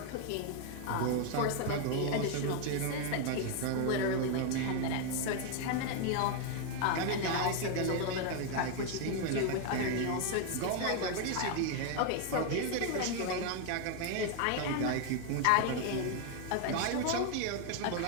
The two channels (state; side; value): different; both; correlation 0.01